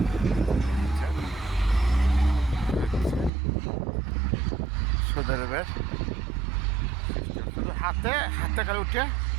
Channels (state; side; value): drops out; left; at 3.3 s